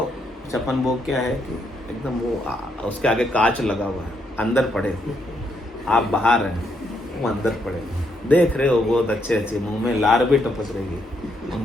56 भोग क्या है कि एकदम वो उसके आगे कांच लगा हुआ है, अंदर पड़े, आप बाहर हैं, वो अंदर पड़े। देख रहे हो बहुत अच्छे अच्छे, मुंह में लार भी टपक रही है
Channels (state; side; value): normal; both; correlation 0.76